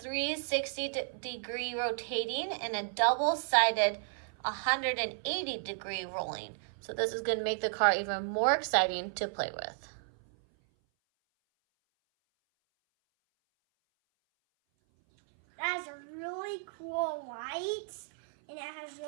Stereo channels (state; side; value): silent; left; 56 dB below the other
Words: rotating and a double-sided 180-degree rolling. So this is going to make the car even more exciting to play with. That has a really cool light, and it has